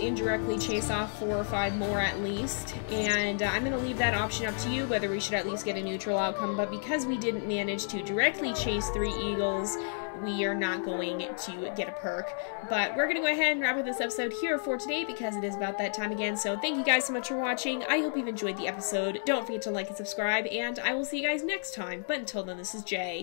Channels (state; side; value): silent; right; digital silence